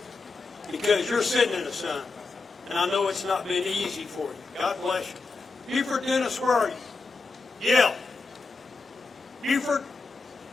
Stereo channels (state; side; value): quieter; right; 4.0 dB